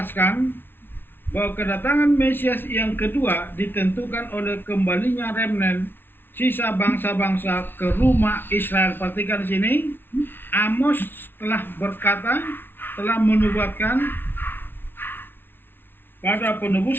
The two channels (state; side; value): late; right; 0.10 ms